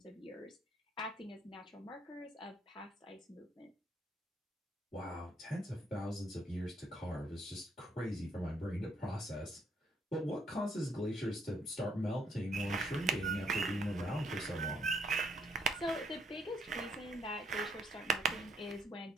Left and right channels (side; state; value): both; normal; correlation 0.71